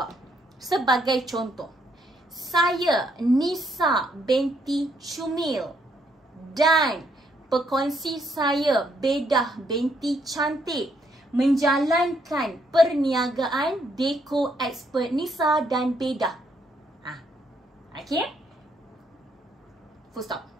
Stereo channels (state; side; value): normal; both; correlation 0.73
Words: Sebagai contoh, saya Nisa binti Syumil dan pekongsi saya Bedah binti Cantik menjalankan perniagaan Deco Expert Nisa dan Bedah. Okay? Full stop.